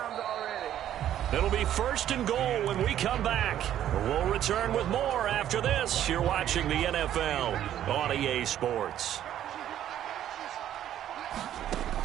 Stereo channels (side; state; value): left; quieter; 11.3 dB